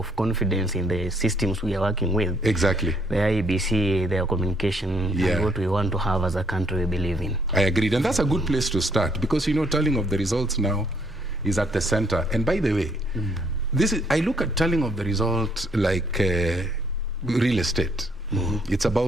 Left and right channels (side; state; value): both; normal; correlation 0.68